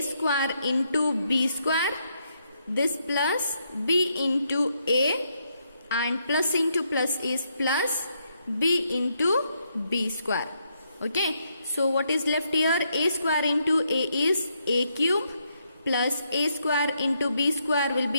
square into b square, this plus b into a, and plus into plus is plus b into b square. Okay, so what is left here? A square into a is a cube, plus a square into b square will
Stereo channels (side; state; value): both; inverted; correlation -0.77